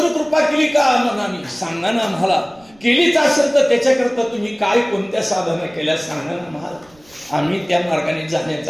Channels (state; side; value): noise; right; rumble, 30 dB below the sound